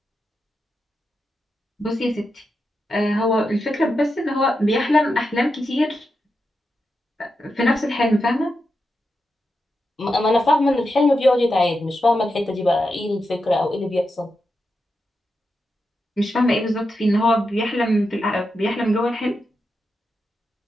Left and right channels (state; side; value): normal; both; correlation 0.87